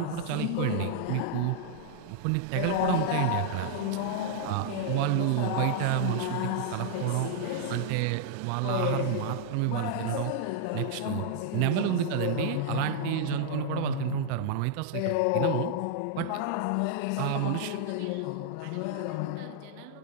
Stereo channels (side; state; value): both; different; correlation -0.01